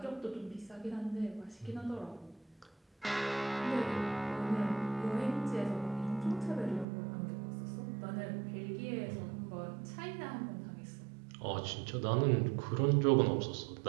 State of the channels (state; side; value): drops out; left; at 6.9 s